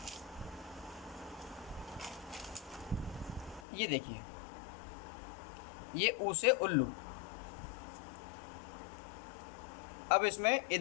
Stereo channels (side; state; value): right; drops out; at 3.6 s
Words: ये देखिए, ये ऊ से उल्लू। अब इसमें ये